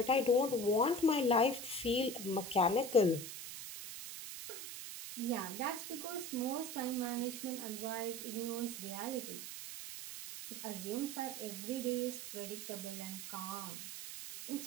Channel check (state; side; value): noise; right; hiss, 8 dB below the sound